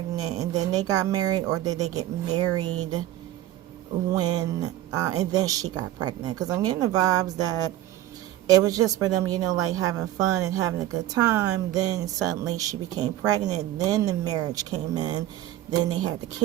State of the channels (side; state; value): left; quieter; 13.8 dB